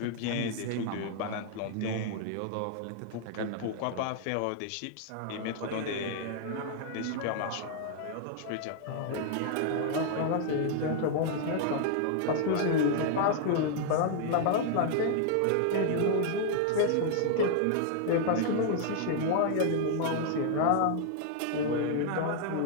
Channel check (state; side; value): different; both; correlation -0.01